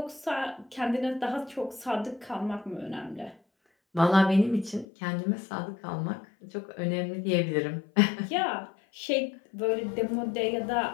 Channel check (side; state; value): right; drops out; at 4.9 s